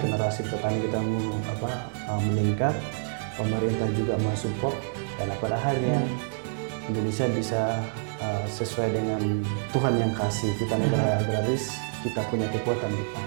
petani kita meningkat, pemerintah juga mensupport, dan pada akhirnya Indonesia bisa sesuai dengan Tuhan yang kasih kita negara agraris, kita punya kekuatan di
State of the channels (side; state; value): left; silent; 60 dB below the other